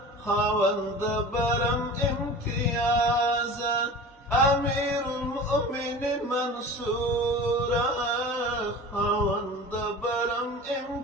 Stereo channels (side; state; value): both; normal; correlation 0.37